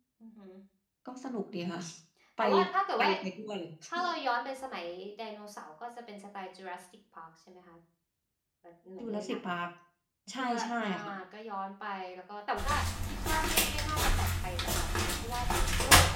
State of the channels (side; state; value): both; identical; correlation 1.00